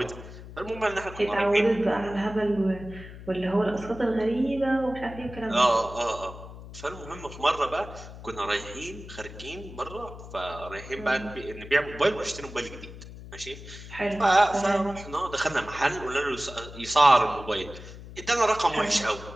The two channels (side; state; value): left; noise; hum, 14 dB below the sound